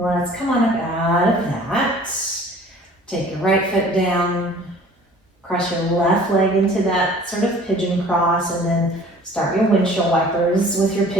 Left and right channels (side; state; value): both; normal; correlation 0.49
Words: come on up out of that. Take your right foot down, cross your left leg into that sort of pigeon cross, and then start your windshield wipers with your